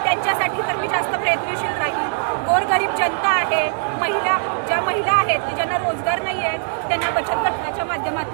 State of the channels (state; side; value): silent; left; digital silence